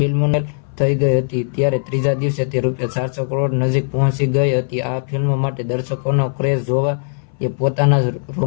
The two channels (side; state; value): right; silent; 61 dB below the other